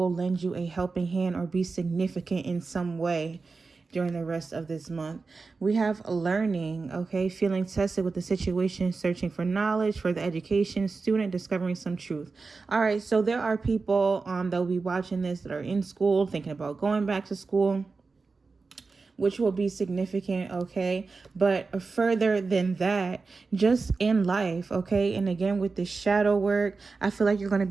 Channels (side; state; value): left; quieter; 4.2 dB